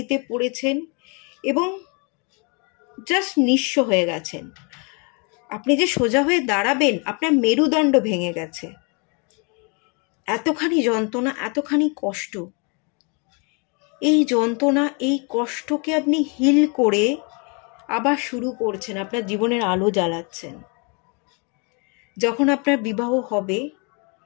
পড়েছেন এবং জাস্ট নিঃস্ব হয়ে গেছেন, আপনি যে সোজা হয়ে দাঁড়াবেন আপনার মেরুদণ্ড ভেঙে গেছে, এতখানি যন্ত্রণা, এতখানি কষ্ট, এই যন্ত্রণা, এই কষ্টকে আপনি হিল করে আবার শুরু করছেন, আপনার জীবনের আলো জ্বালাচ্ছেন। যখন আপনার বিবাহ হবে,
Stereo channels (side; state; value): right; quieter; 34.0 dB